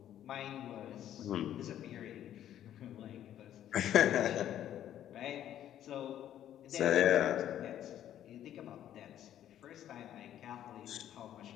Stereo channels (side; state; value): right; quieter; 11.3 dB